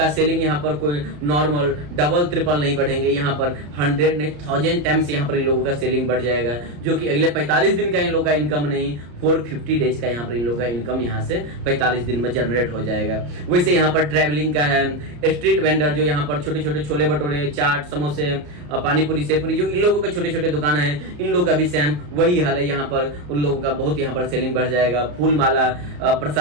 सेलिंग यहाँ पर कोई नॉर्मल डबल ट्रिपल नहीं बढ़ेंगे, यहाँ पर 100 नहीं 1000 टाइम्स यहाँ पर इन लोगों का सेलिंग बढ़ जाएगा, जो कि अगले 45 दिन का इन लोगों का इनकम नहीं 450 डेज का यहाँ पर इन लोगों का इनकम यहाँ से 45 दिन में जनरेट हो जाएगा। वैसे यहाँ पर ट्रैवलिंग का है, स्ट्रीट वेंडर जो यहाँ पर छोटे छोटे छोले भटूरे, चाट, समोसे, पानीपुरी, सेपुरी, जो इन लोगों के छोटे छोटे दुकान है, इन लोगों का भी सेम वही हाल है। यहाँ पर उन लोगों का बहुत यहाँ पर सेलिंग बढ़ जाएगा। फूल माला,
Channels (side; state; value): left; late; 34 ms